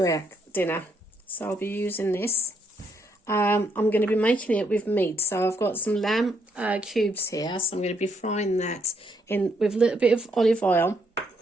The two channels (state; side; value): normal; both; correlation 0.74